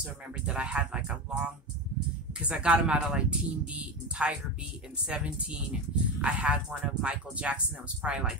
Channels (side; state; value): both; normal; correlation 0.20